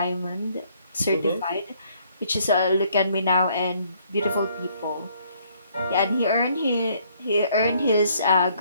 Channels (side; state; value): both; inverted; correlation -0.65